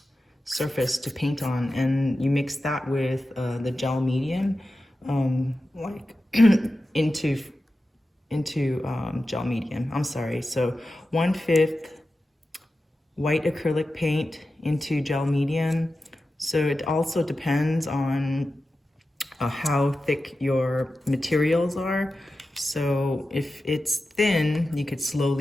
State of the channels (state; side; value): normal; both; correlation 0.93